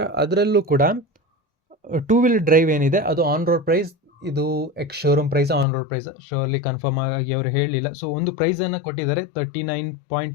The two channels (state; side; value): drops out; right; at 5.7 s